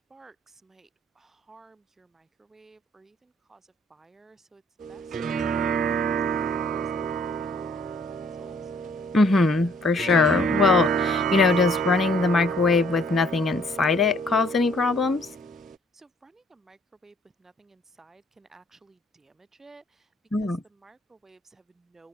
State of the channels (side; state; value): both; normal; correlation 0.62